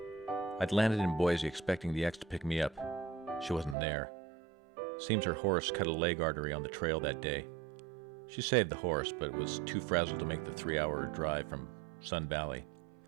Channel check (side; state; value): left; drops out; at 3.8 s